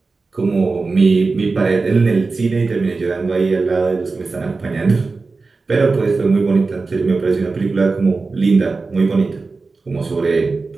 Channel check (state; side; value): quieter; left; 4.0 dB